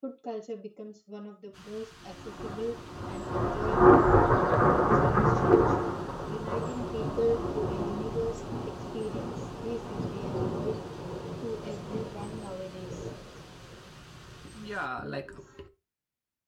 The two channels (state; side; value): identical; both; correlation 1.00